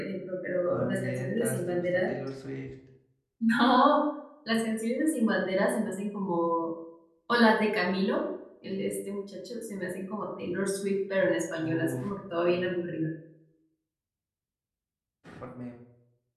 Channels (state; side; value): identical; both; correlation 1.00